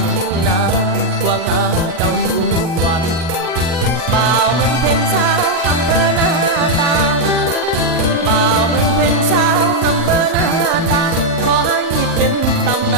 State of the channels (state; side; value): late; left; 38 ms